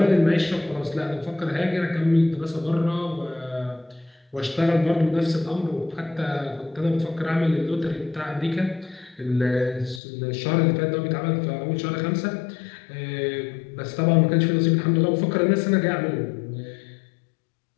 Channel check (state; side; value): drops out; right; at 10.0 s